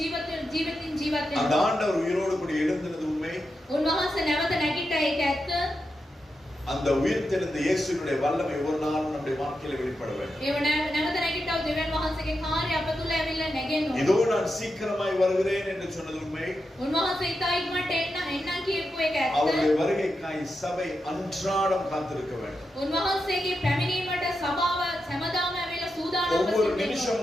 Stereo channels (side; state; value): both; normal; correlation 0.87